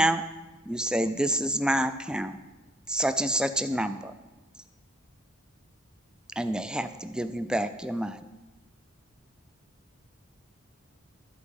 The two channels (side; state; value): both; normal; correlation 0.66